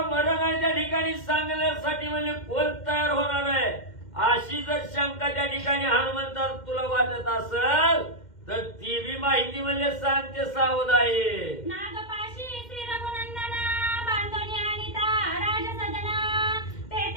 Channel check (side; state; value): right; late; 2.1 ms